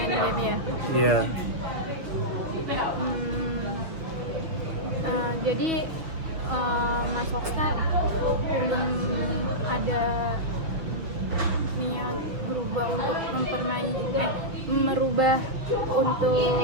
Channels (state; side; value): late; left; 6.5 ms